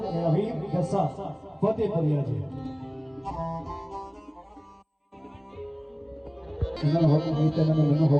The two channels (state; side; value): identical; both; correlation 1.00